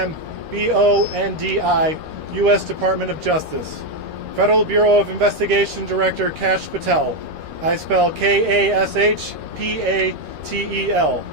U.S. Department of Justice. Federal Bureau of Investigation Director Kash Patel. I spell K-A-S-H-P-A-T-E-L,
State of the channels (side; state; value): left; late; 13 ms